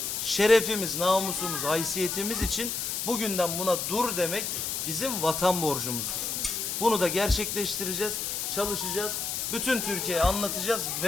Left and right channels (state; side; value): noise; left; hiss, 2 dB below the sound